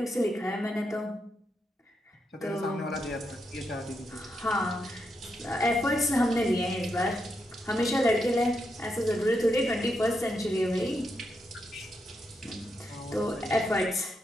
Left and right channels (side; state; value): both; normal; correlation 0.83